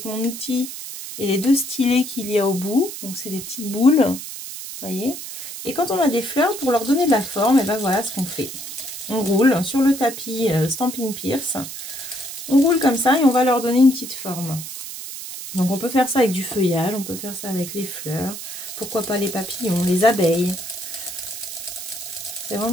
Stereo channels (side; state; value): right; noise; hiss, 9 dB below the sound